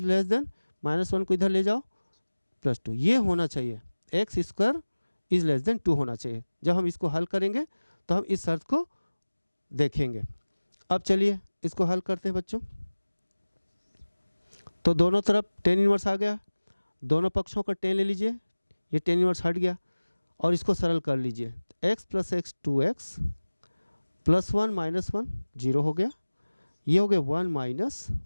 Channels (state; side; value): inverted; both; correlation -1.00